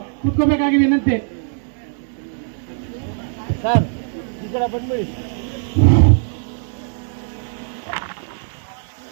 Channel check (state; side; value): silent; left; digital silence